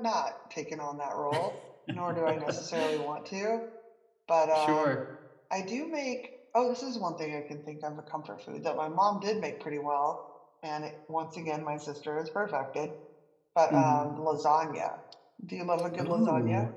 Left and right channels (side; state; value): both; identical; correlation 1.00